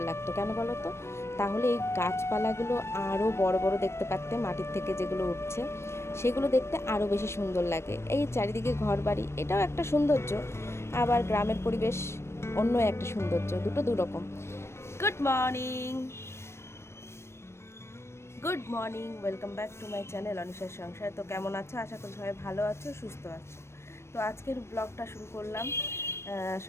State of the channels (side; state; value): right; late; 0.13 ms